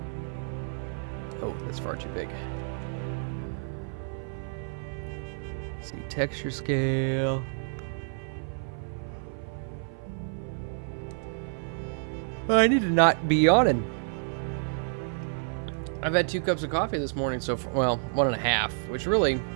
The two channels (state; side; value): silent; left; 55 dB below the other